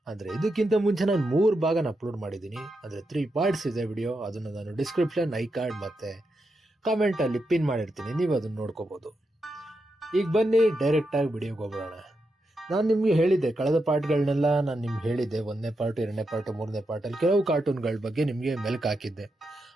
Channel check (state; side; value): normal; both; correlation 0.85